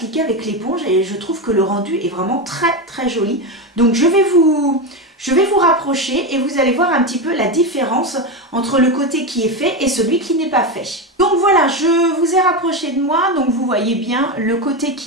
avec l'éponge, et je trouve que le rendu est vraiment très très joli. Donc je vais vous rapprocher et vous allez voir un petit peu la différence entre le côté qui est fait et celui qui n'est pas fait. Donc voilà, je vous ai rapproché de moi, donc vous voyez bien le côté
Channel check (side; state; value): both; normal; correlation 0.15